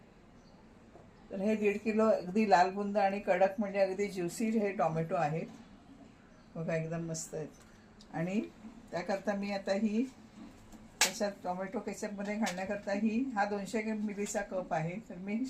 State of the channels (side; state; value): both; identical; correlation 1.00